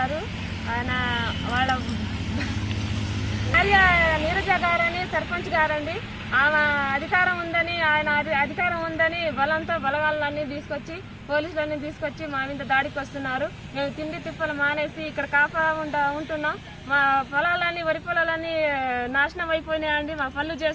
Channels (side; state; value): both; identical; correlation 1.00